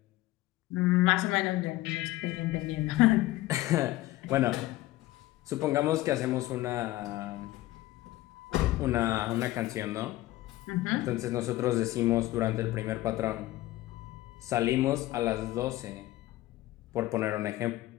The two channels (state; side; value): quieter; right; 16.9 dB